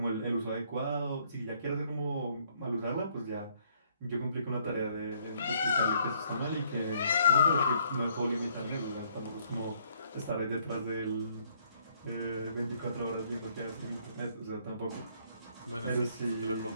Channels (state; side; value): inverted; both; correlation -0.66